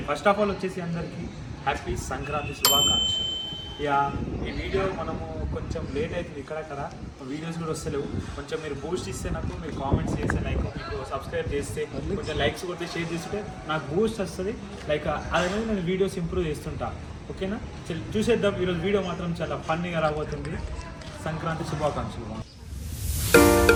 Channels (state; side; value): identical; both; correlation 1.00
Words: first of all వచ్చేసి అందరికీ happy Sankranti శుభాకాంక్షలు. Yeah, ఈ వీడియో మనము కొంచెం లేట్ అవుతుంది, ఇక్కడక్కడ వీడియోస్ కూడా వస్తలేవు. కొంచెం మీరు బూస్ట్ ఇస్తే నాకు, మీరు కామెంట్స్ చేస్తే, లైక్ మీకు సబ్స్క్రైబ్ చేస్తే, కొంచెం లైక్స్ కొట్టి షేర్ చేస్తుంటే నాకు బూస్ట్ వస్తుంది. లైక్ అదే నేను వీడియోస్ ఇంప్రూవ్ చేస్తుంటా. ఓకేనా, చూసేద్దాం. ఈరోజు వీడియో మాత్రం చాలా ఫన్నీగా రాబోతుంది. సంక్రాంతి శుభాకాంక్షలు.